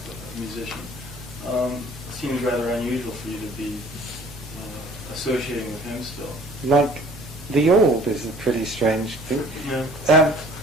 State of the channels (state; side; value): normal; both; correlation 0.52